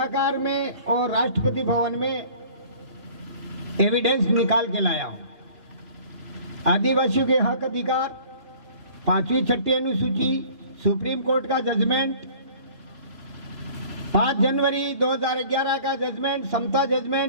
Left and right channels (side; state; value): left; late; 2.8 ms